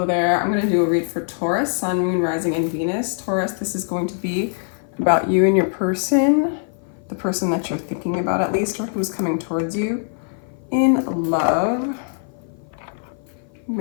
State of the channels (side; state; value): right; silent; 55 dB below the other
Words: there. I'm going to do a read for Taurus, Sun, Moon, Rising, and Venus. Taurus, this is going to be about you and your person, the person that you're thinking about at least, or who's coming towards you in love,